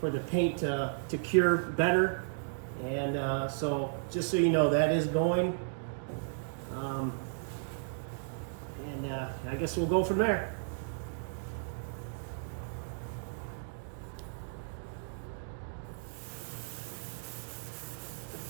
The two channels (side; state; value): left; silent; digital silence